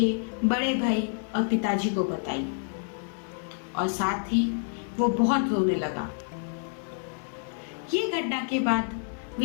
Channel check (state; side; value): silent; right; 59 dB below the other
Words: बड़े भाई और पिताजी को बताई और साथ ही वो बहुत रोने लगा। ये घटना के बाद